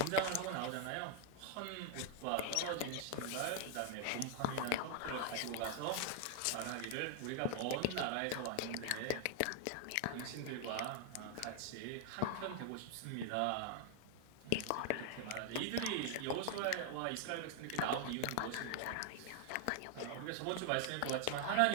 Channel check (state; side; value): different; both; correlation 0.00